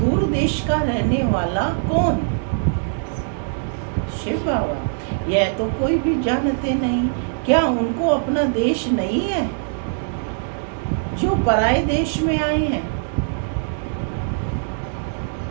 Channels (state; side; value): silent; left; 64 dB below the other